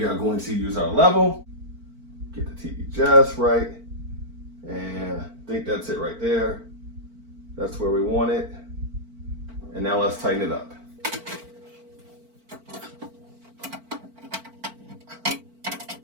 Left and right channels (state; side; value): late; left; 4.4 ms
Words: are going to use our level, get the TV just right, and I think that's it right there. That's where we want it. And now let's tighten it up.